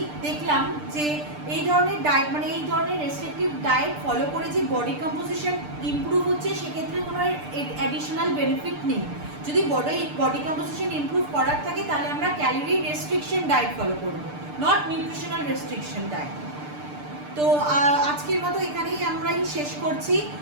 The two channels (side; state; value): left; late; 6.7 ms